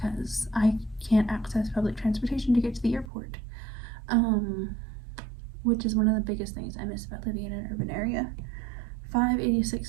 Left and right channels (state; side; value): drops out; left; at 3.1 s